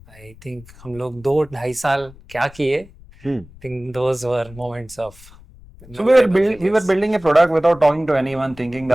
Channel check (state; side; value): noise; left; rumble, 22 dB below the sound